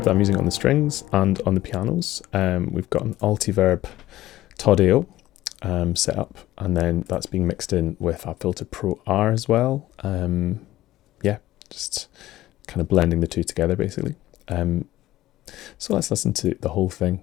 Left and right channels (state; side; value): quieter; right; 15.4 dB